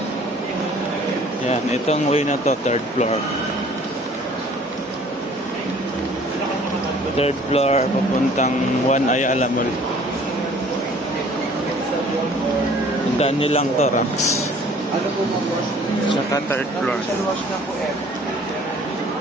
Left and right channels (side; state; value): both; normal; correlation 0.53